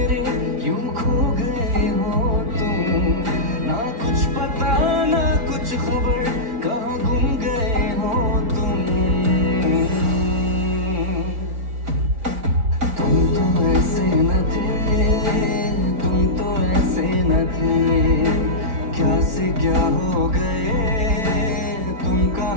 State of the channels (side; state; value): left; late; 4.4 ms